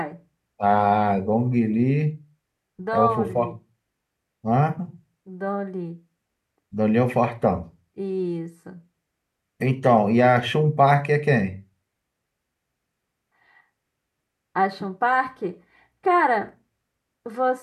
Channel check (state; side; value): identical; both; correlation 1.00